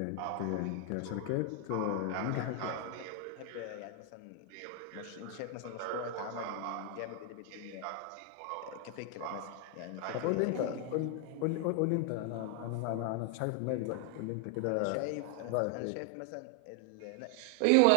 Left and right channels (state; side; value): different; both; correlation 0.00